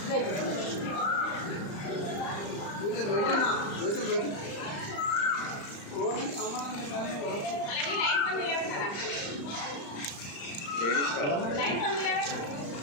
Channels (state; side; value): late; right; 35 ms